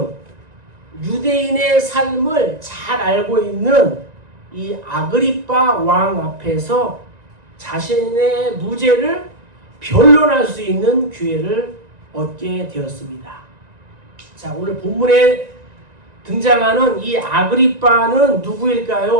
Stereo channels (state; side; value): late; left; 1.9 ms